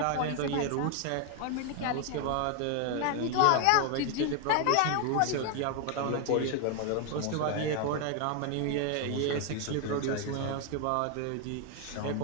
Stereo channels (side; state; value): both; different; correlation 0.01